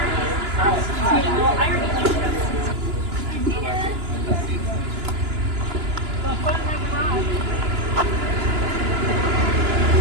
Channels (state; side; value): late; left; 2.9 ms